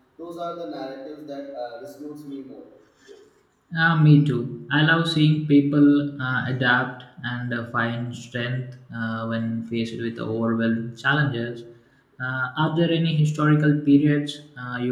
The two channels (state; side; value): identical; both; correlation 1.00